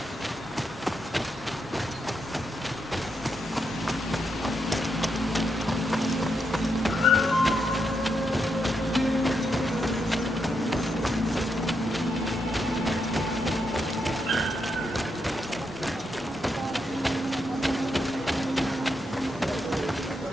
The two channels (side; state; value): both; normal; correlation 0.82